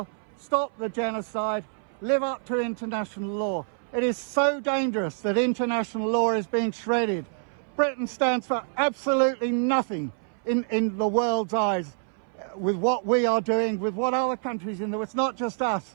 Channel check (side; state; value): left; silent; 59 dB below the other